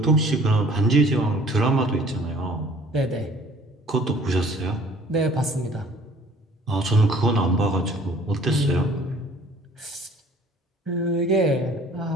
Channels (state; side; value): normal; both; correlation 0.53